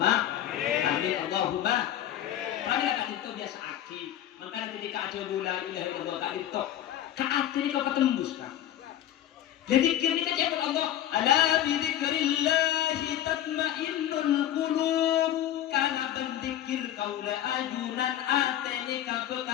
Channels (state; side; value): quieter; right; 11.9 dB